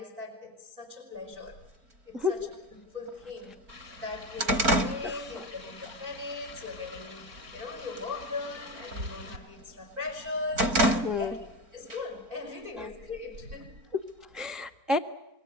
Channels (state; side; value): late; left; 4.4 ms